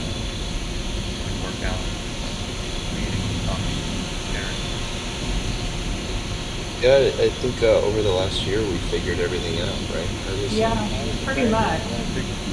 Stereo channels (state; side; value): identical; both; correlation 1.00